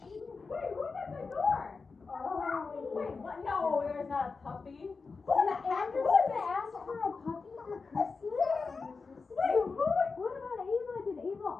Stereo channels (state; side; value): quieter; right; 4.5 dB